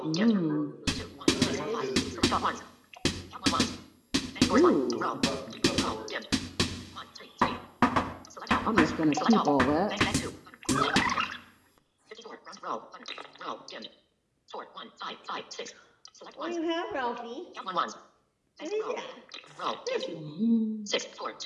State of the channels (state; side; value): identical; both; correlation 1.00